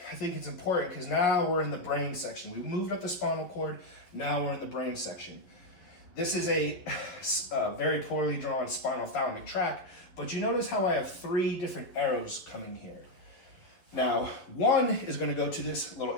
I think it's important because now we're in the brain section. We moved up the spinal cord, now we're in the brain section. This is a very poorly drawn spinal thalamic tract, but you notice how I have three different arrows coming here. Now, one is going to go to this little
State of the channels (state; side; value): late; right; 11 ms